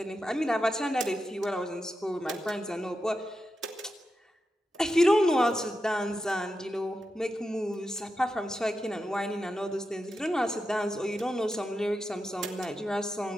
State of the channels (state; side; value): normal; both; correlation 0.89